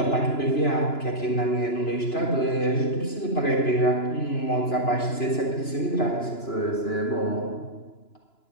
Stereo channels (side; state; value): right; late; 2.9 ms